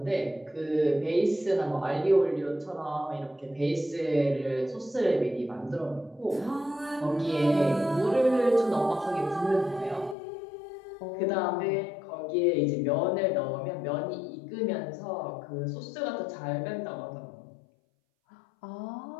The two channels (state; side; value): drops out; right; at 10.2 s